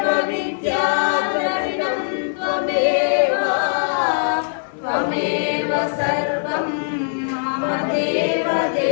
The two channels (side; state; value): right; silent; 61 dB below the other